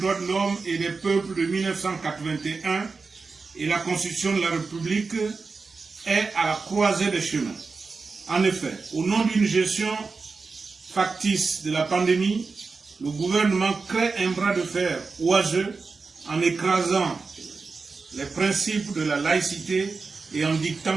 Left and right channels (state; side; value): quieter; left; 4.4 dB